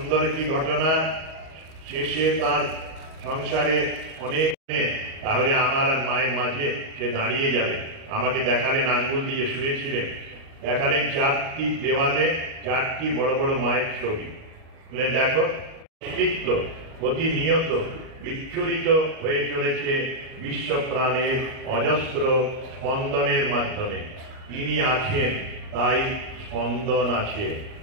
একটি ঘটনা। শেষে তার সংসারে অনেক, তাহলে আমার আর মায়ের মাঝে সে দাঁড়িয়ে যাবে। আমাকে দেখালেন, আঙ্গুল দিয়ে শুয়েছিলেন, দেখালেন 4টি দেওয়ালে 4টি বড় বড় মায়ের ছবি। বললেন দেখো, অস্তিত্ব প্রতিনিয়ত বিচ্ছুরিত হয়ে চলেছে বিশ্ব প্রাণের অজস্র স্পন্দনের মাধ্যমে। তিনি আছেন, তাই স্পন্দন আছে।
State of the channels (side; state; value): left; late; 38 ms